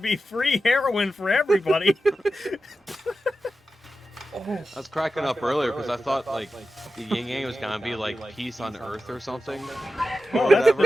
free heroin for everybody. I was cracking up earlier because I thought like the yin yang was gonna be like peace on Earth or something. Well, Or whatever.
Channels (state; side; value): normal; both; correlation 0.92